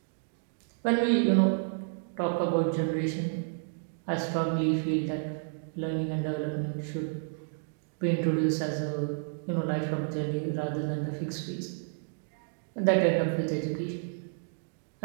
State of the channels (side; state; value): left; silent; digital silence